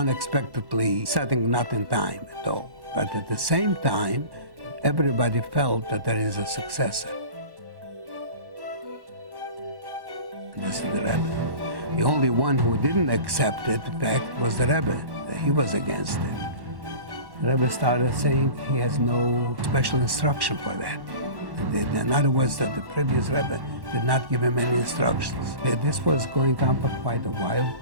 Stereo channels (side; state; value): left; late; 1.2 ms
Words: setting not in time at all. But at the same time, everybody felt that there is a successor. And this is the Rebbe. The only one who didn't accept it, in fact, was the Rebbe. He was against it. The Rebbe started saying he has no special instruction for that. In other words, that the previous Rebbe did not give him any instructions. This was going on for quite a while.